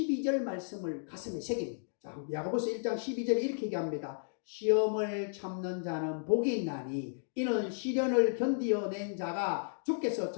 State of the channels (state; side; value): silent; right; digital silence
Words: 말씀을 가슴에 새깁니다. 자, 야고보서 1장 12절에 이렇게 얘기합니다. 시험을 참는 자는 복이 있나니 이는 시련을 견디어낸 자가 주께서